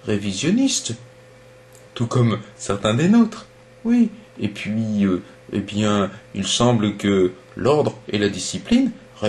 révisionnistes, tout comme certains des nôtres. Oui, et puis, eh bien, il semble que l'ordre et la discipline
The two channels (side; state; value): both; identical; correlation 1.00